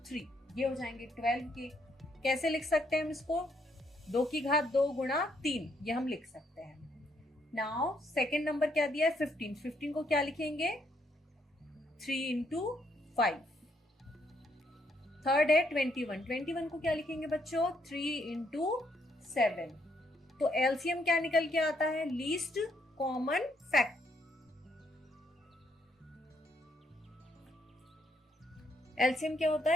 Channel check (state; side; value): normal; both; correlation 0.73